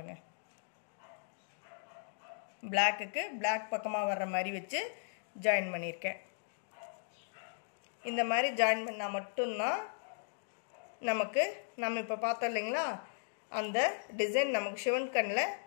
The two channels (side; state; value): right; silent; digital silence